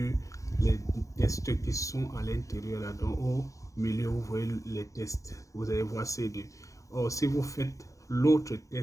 les tests qui sont à l'intérieur là, donc au milieu vous voyez les tests, vous allez voir C2. Or si vous faites l'autre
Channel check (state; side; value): late; right; 0.16 ms